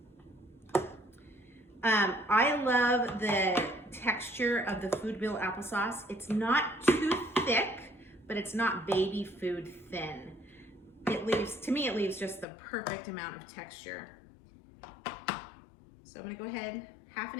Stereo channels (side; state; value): right; drops out; at 12.5 s